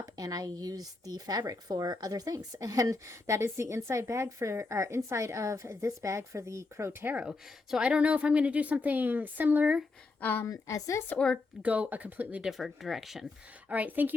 and I used the fabric for other things. And that is the inside bag for, or inside of this bag for the Crow Tarot. So I don't know if I'm going to do something similar as this or go a completely different direction. All right. Thank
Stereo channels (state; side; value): quieter; right; 3.6 dB